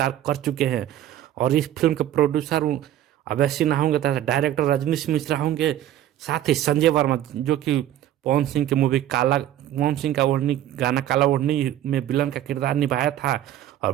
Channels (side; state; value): left; quieter; 12.3 dB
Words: कर चुके हैं। और इस फिल्म के प्रोड्यूसर अवैध सिन्हा होंगे तथा डायरेक्टर रजनीश मिश्रा होंगे। साथ ही संजय वर्मा, जो कि पवन सिंह की मूवी काला, पवन सिंह का ओढ़नी गाना काला ओढ़नी में विलन का किरदार निभाया था। और